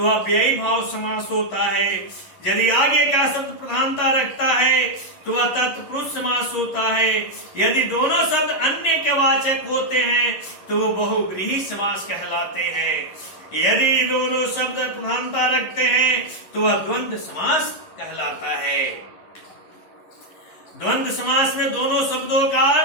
अव्ययी भाव समास होता है। यदि आगे का शब्द प्रधानता रखता है तो वह तत्पुरुष समास होता है। यदि दोनों शब्द अन्य के वाचक होते हैं तो वो बहुव्रीहि समास कहलाते हैं। यदि दोनों शब्द प्रधानता रखते हैं तो वह द्वंद्व समास कहलाता है। द्वंद्व समास में दोनों शब्दों का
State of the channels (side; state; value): right; late; 11 ms